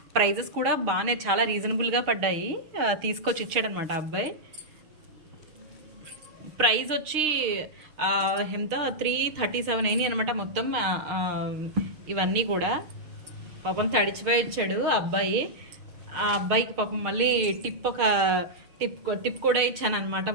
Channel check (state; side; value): late; left; 6.6 ms